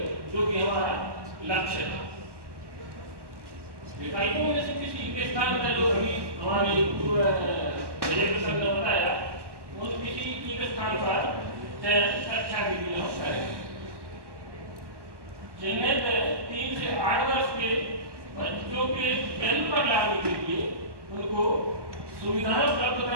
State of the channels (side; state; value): left; late; 1.1 ms